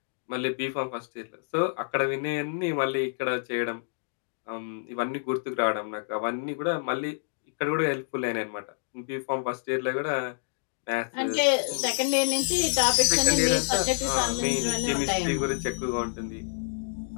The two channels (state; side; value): silent; right; digital silence